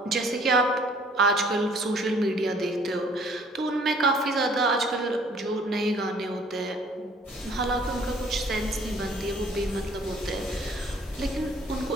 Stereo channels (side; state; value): both; normal; correlation 0.57